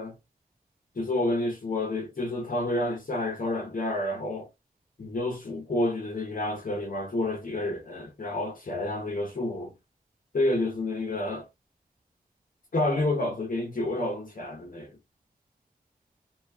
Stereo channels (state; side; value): normal; both; correlation 0.56